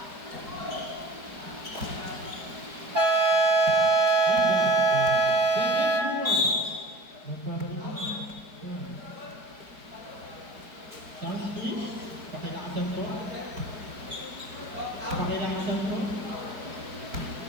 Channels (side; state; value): left; late; 4.8 ms